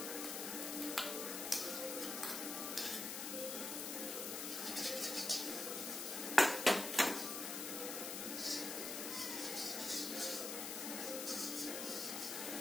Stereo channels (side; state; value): left; noise; hiss, 4 dB below the sound